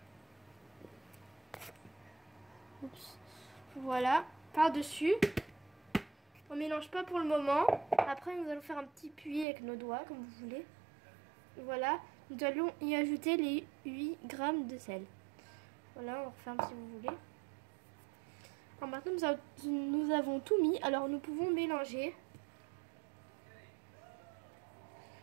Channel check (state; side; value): drops out; left; at 9.5 s